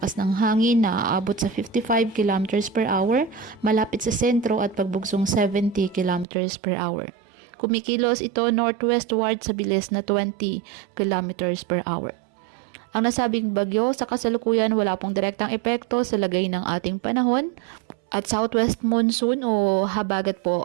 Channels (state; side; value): drops out; left; at 6.2 s